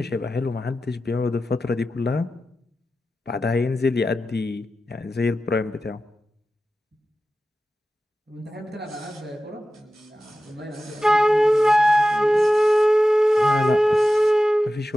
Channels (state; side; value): normal; both; correlation 0.94